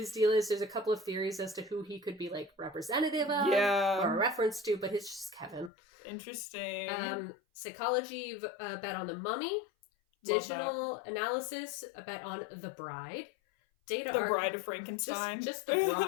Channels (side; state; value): right; drops out; at 5.7 s